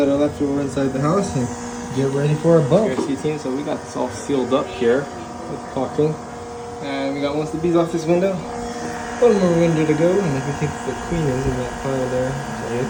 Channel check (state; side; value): identical; both; correlation 1.00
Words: are left over inside the house and get ready for a bump. Rescue team. So we got this all sealed up here with caulking, and we got most of the bees off this window. One more window to go, and I think the queen is in that pile there. So